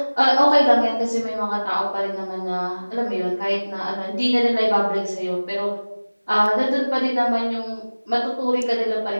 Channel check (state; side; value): inverted; both; correlation -1.00